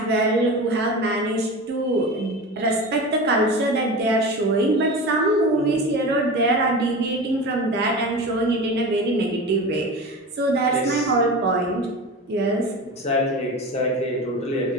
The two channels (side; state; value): both; normal; correlation 0.30